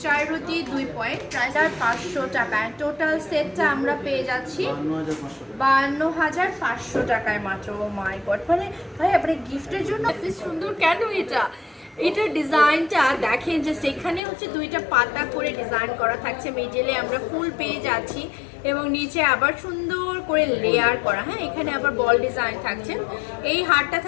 4 রতি 2 পয়েন্ট, প্রাইস 500 টাকা। টোটাল সেটটা আমরা পেয়ে যাচ্ছি 52,500 টাকায় মাত্র। ও মাই গড, মানে ভাই আপনার গিফটের জন্য এত সুন্দর কেন এটা? এটার ডিজাইনটা দেখেন যে সেখানে হচ্ছে 2টা পাতা করে ডিজাইন করা থাকছে, মিডলে আমরা ফুল পেয়ে যাচ্ছি এবং নিচে আবার সুন্দর করে লেয়ার করা। হ্যাঁ এখানে আবার বল ডিজাইন থাকছে। এই হারটা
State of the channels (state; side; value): drops out; right; at 14.2 s